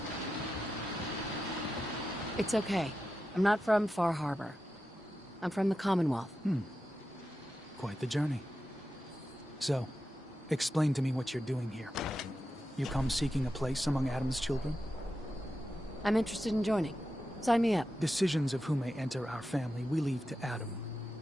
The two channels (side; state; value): both; normal; correlation 0.90